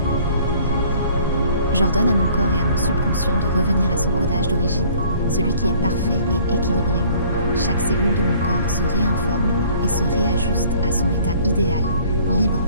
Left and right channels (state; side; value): inverted; both; correlation -0.54